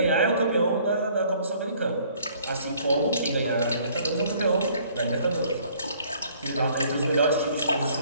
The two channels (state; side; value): inverted; both; correlation -0.59